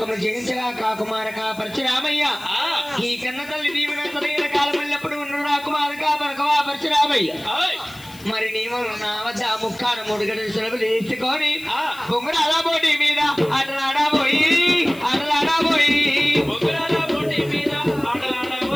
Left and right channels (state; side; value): noise; left; hiss, 20 dB below the sound